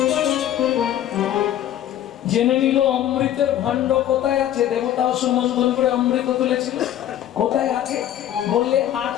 জেনে নিল অমৃতের ভাণ্ড কোথায় আছে। দেবতা সুমন্থন করে অমৃত তুলেছিল, কোথায় আছে বললে, আর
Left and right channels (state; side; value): quieter; right; 11.6 dB